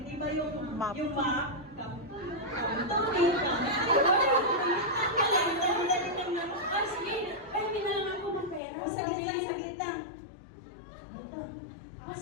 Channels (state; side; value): drops out; right; at 8.6 s